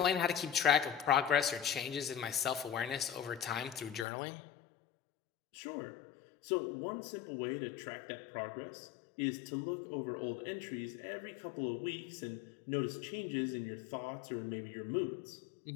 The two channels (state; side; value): drops out; right; at 4.0 s